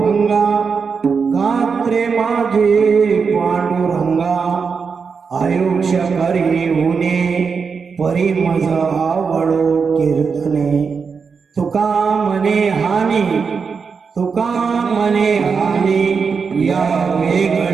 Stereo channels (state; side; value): quieter; left; 5.5 dB